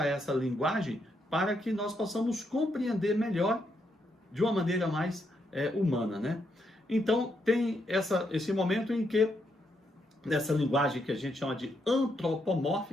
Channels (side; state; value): both; normal; correlation 0.78